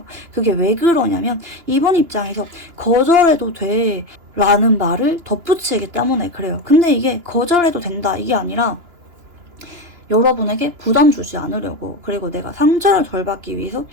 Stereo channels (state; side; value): late; left; 2.9 ms